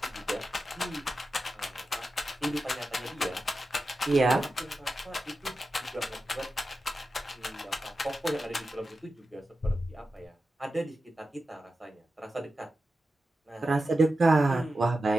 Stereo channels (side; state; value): both; normal; correlation 0.92